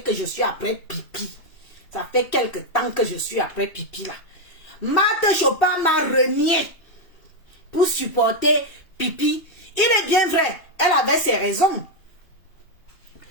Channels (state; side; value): late; right; 2.8 ms